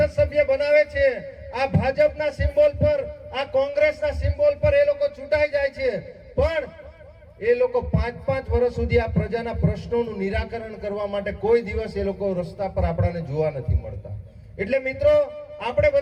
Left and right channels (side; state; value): both; identical; correlation 1.00